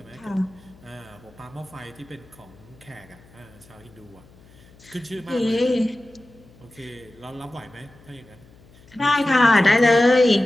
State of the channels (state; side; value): noise; left; hum, 26 dB below the sound